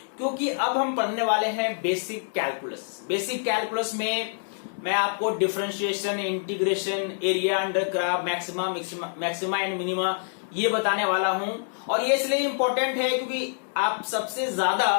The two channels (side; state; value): right; silent; digital silence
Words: क्योंकि अब हम पढ़ने वाले हैं बेसिक कैलकुलस। बेसिक कैलकुलस में मैं आपको differentiation, integration, area under curve, maxima and minima ये बताने वाला हूं। और ये इसलिए इंपॉर्टेंट है क्योंकि आप सबसे ज्यादा